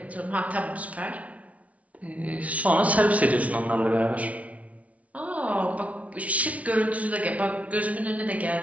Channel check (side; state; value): left; late; 0.067 ms